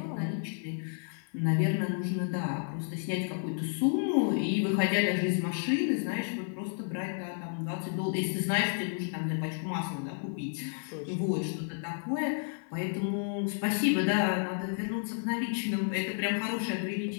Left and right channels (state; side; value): silent; right; digital silence